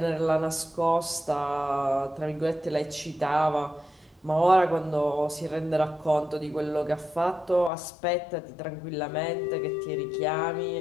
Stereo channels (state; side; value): drops out; right; at 7.7 s